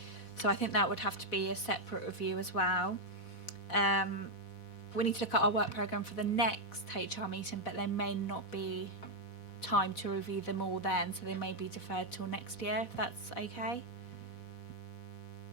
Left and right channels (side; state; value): right; late; 4.1 ms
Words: so I think that would have to be a separate review as well. We need to look at our work programme for the next HR meeting, but there may not be time to review them all then, so they may be deferred till next year, if that's okay.